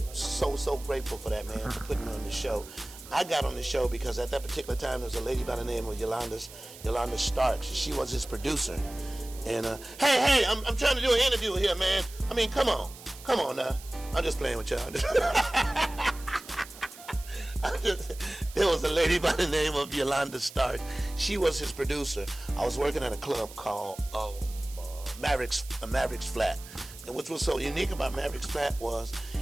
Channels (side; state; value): right; noise; hiss, 17 dB below the sound